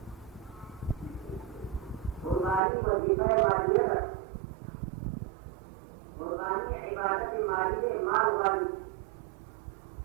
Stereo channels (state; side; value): drops out; left; at 2.6 s